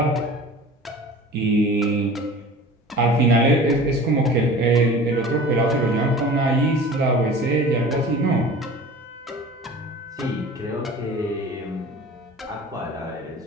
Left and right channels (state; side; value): normal; both; correlation 0.40